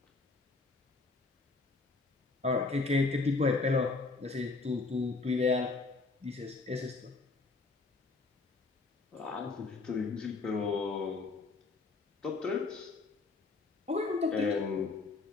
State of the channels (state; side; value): quieter; right; 3.9 dB